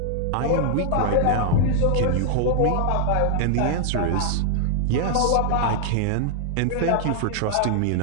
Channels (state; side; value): different; both; correlation -0.01